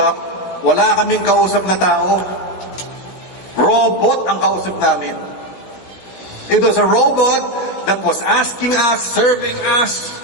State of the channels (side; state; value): right; late; 16 ms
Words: wala kaming kausap na tao. Robot ang kausap namin. It was a robot that was asking us, serving us,